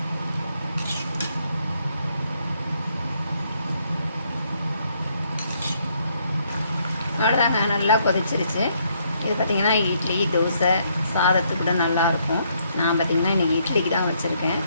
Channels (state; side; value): inverted; both; correlation -0.71